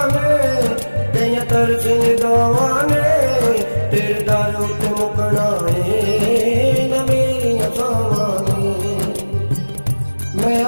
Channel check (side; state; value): both; inverted; correlation -1.00